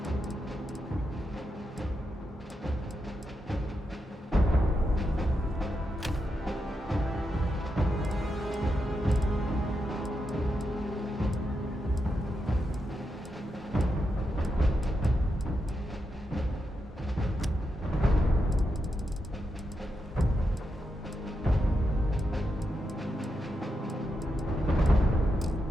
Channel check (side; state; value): both; normal; correlation 0.85